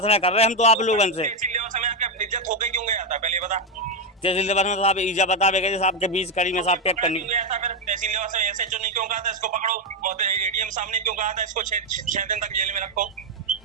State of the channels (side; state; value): both; normal; correlation 0.04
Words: कर रहे हैं हम तो आप लोगों से। इज्जत होके क्यों गया था पहले बता। तहसील में साहब ईजा बता गए साहब के बीच कड़ी में साहब पैक करनी तहसील ऐसे जो नहीं क्यों कहा था इसको पकड़ो और एडीएम सामने क्यों कहा था इसको 6 दिन तक जेल में रखो।